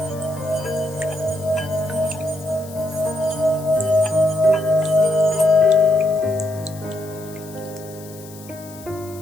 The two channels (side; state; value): left; noise; hiss, 20 dB below the sound